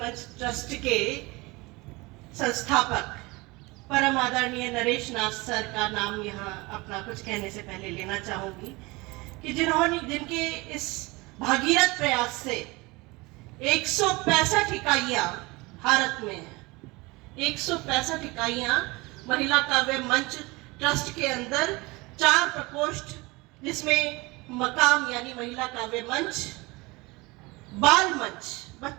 मंच ट्रस्ट के संस्थापक परम आदरणीय नरेश नाथ सर का नाम यहाँ अपना कुछ कहने से पहले लेना चाहूंगी कि जिनके इस भागीरथ प्रयास से 165 इकाइयां भारत में है। 165 इकाइयां महिला काव्य मंच ट्रस्ट के अंदर 4 प्रकोष्ठ, जिसमें मकाम यानी महिला काव्य मंच, बाल मंच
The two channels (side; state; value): left; quieter; 23.8 dB